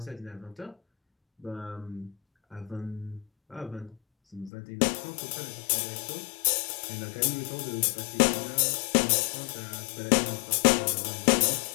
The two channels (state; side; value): drops out; right; at 4.5 s